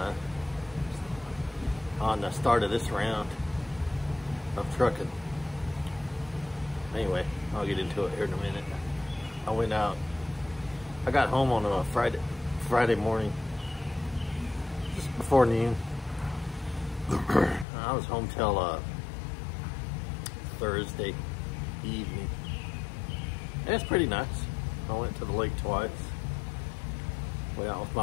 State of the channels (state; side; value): drops out; right; at 17.7 s